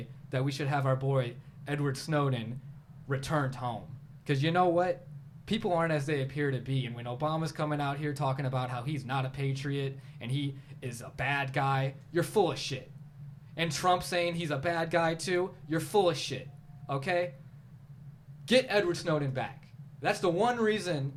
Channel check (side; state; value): both; identical; correlation 1.00